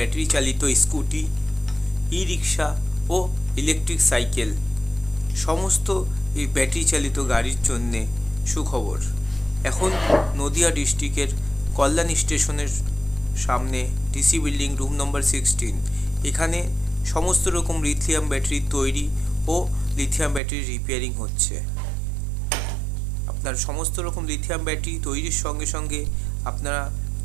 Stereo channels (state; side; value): drops out; left; at 20.4 s